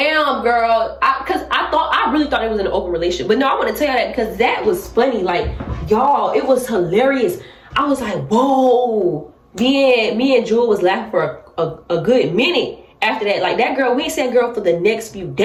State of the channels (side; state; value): both; identical; correlation 1.00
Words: girl. Because I really thought it was an open relationship. But no, I want to tell you that because that was funny. Like, y'all, it was hilarious. I was like, whoa. Me and Jewel was laughing for a good minute after that. Like, that girl, we ain't seen that girl for the next few